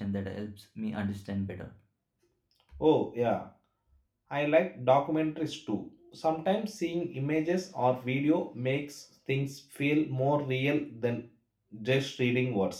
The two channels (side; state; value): both; identical; correlation 1.00